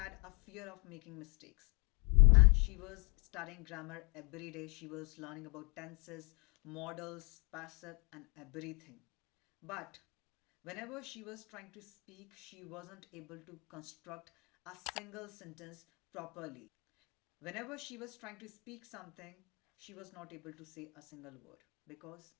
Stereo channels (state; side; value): quieter; right; 30.4 dB